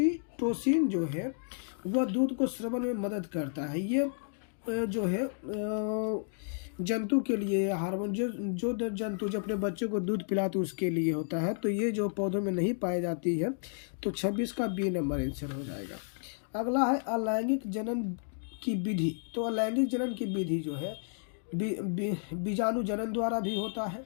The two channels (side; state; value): right; silent; digital silence